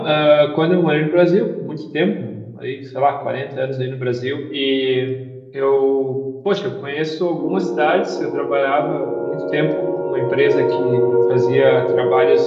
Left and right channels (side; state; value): both; identical; correlation 1.00